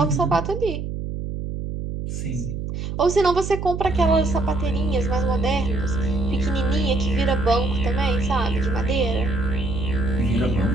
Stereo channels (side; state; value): right; noise; hum, 5 dB below the sound